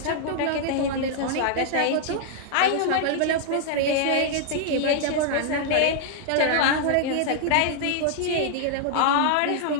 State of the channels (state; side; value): different; both; correlation -0.01